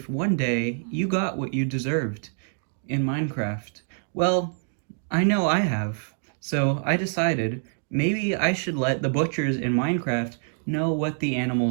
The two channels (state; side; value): silent; left; digital silence